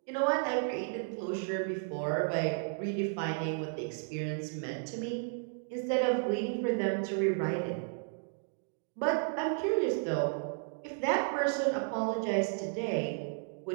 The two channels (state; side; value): silent; left; 56 dB below the other